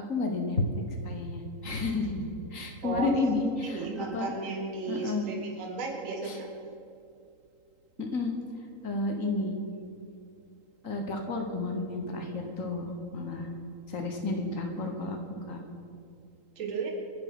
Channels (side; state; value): left; late; 3.8 ms